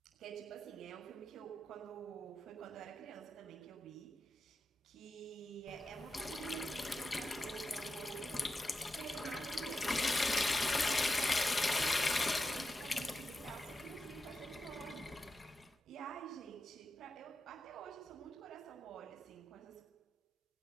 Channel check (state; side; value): normal; both; correlation 0.90